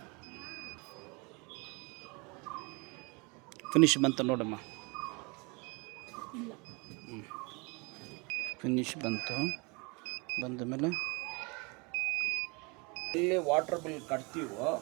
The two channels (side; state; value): left; quieter; 29.3 dB